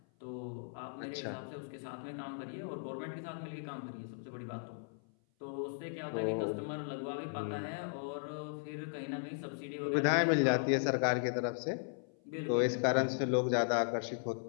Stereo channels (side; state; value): right; silent; 53 dB below the other